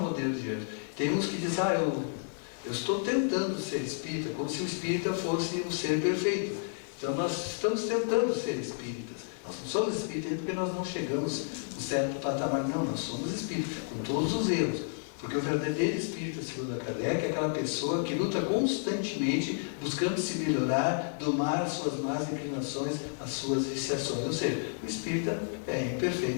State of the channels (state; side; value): silent; right; digital silence